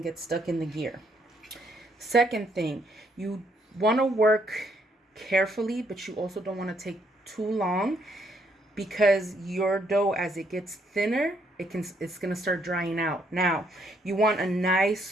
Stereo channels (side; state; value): both; normal; correlation 0.72